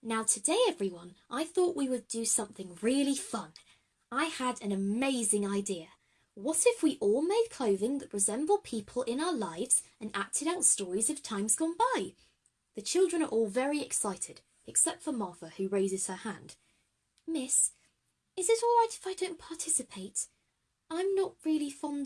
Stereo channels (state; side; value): identical; both; correlation 1.00